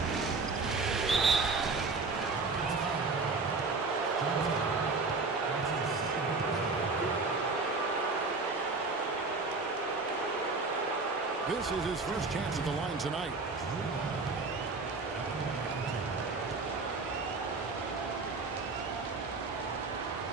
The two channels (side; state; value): left; quieter; 3.9 dB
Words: This is his first chance at the line tonight.